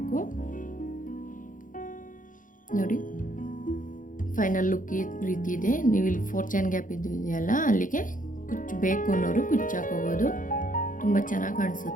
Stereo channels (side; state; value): right; late; 0.39 ms